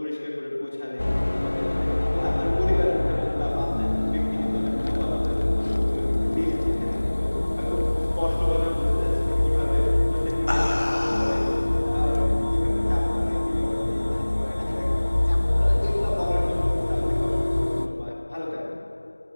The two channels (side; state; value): both; inverted; correlation -1.00